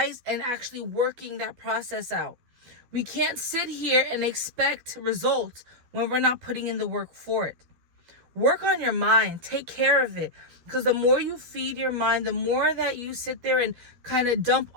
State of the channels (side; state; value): left; late; 12 ms